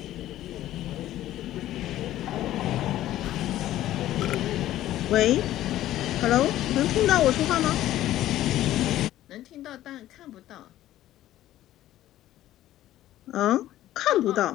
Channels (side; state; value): right; quieter; 13.8 dB